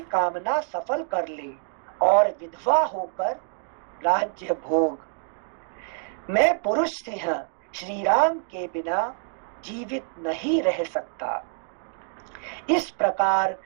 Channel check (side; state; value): left; silent; 61 dB below the other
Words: कामना सफल कर ले और विधवा होकर राज्य भोग। मैं पुरुष सिंह श्री राम के बिना जीवित नहीं रह सकता। इस प्रकार